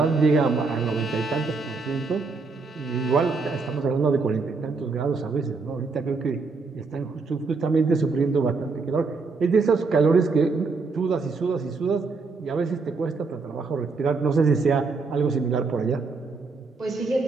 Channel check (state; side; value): quieter; left; 4.2 dB